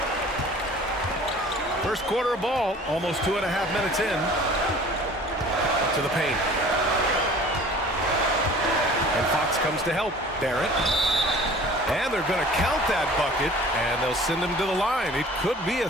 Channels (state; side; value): normal; both; correlation 0.46